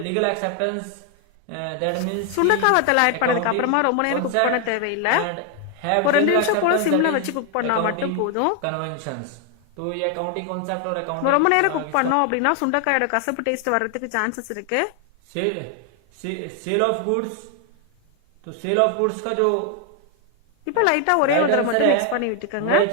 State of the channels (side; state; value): both; different; correlation 0.01